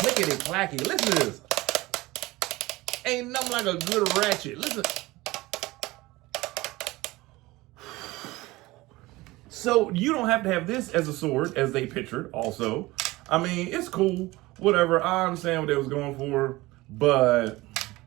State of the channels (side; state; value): left; quieter; 20.1 dB